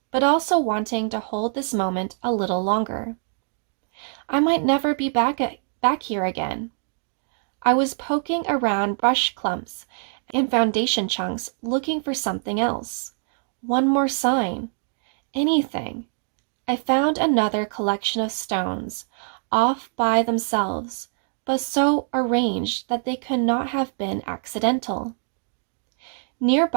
but also wanting to hold this moment a little longer. I might never be back here again. I was poking around brush clumps and foundation chunks looking for something else. One more sign. Anything. I found another collection of stones, off by themselves, but so arranged that they could not have been accidental.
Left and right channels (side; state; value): left; silent; digital silence